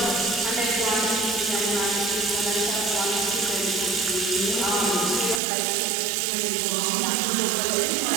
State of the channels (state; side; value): drops out; left; at 5.4 s